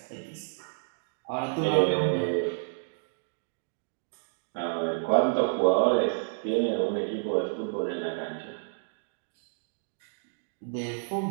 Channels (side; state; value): left; silent; digital silence